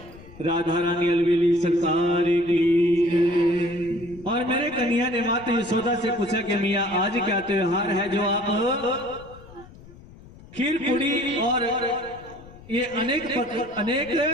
राधा रानी अलवेली सरकार की। और मेरे कन्हैया ने माता यशोदा से पूछा कि मियाँ आज क्या त्योहार है जो आप खीर पूरी और ये अनेक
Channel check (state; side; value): noise; left; rumble, 20 dB below the sound